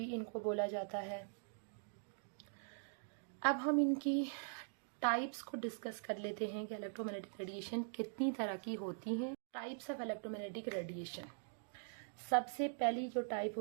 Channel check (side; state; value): left; silent; digital silence